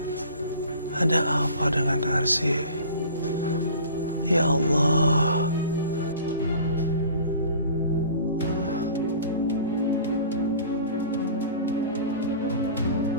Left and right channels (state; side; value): inverted; both; correlation -0.43